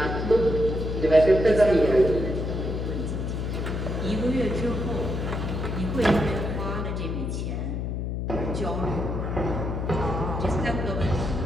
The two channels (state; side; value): noise; left; hum, 2 dB below the sound